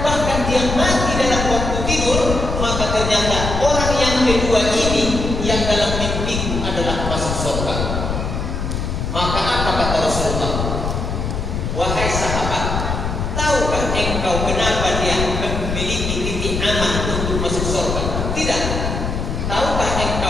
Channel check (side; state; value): left; noise; rumble, 2 dB below the sound